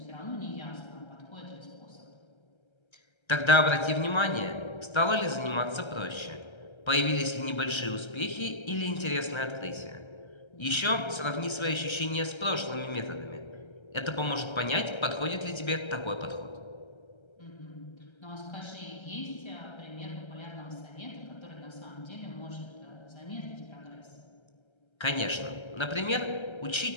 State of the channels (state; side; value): late; right; 1.3 ms